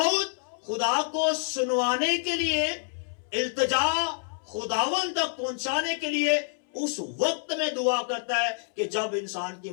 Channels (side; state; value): right; silent; 60 dB below the other